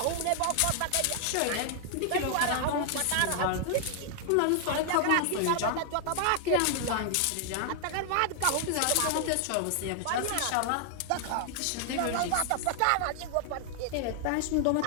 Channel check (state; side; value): different; both; correlation 0.00